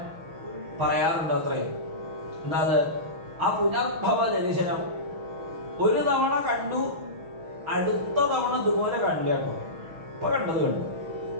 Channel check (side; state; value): left; late; 6.2 ms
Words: പറയാറുണ്ട്. അത്രയും എന്താ അത്? ആ പുനർഭവ ദർശനം ഒരു തവണ കണ്ടു, അടുത്ത തവണ ഇതുപോലെ കണ്ടില്ല കേട്ടോ. ഇപ്പൊ കണ്ടത് കണ്ടു,